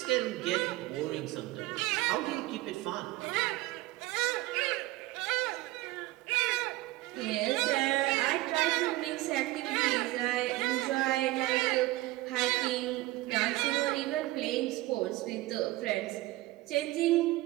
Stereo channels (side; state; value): left; quieter; 18.7 dB